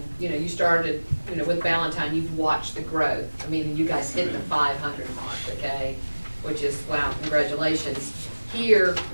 You know, you started, you know, with Valentine, you've watched the growth. I mean, you guys hit the 500 mark, okay? Which is, wow, congratulations. Here,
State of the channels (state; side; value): inverted; both; correlation -1.00